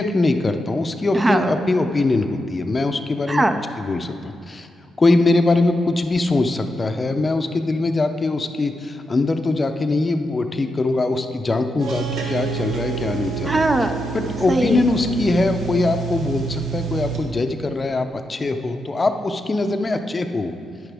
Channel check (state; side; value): normal; both; correlation 0.86